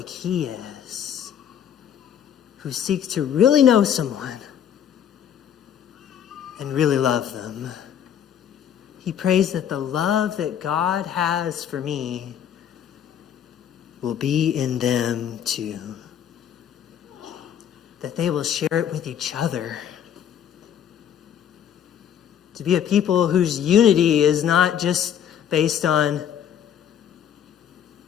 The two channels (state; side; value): quieter; right; 9.2 dB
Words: he is, who seek to really know someone and really love them. He prays that the love that God has for me will be in them too, that they will share it with each other. To be a people whose unity is not just based on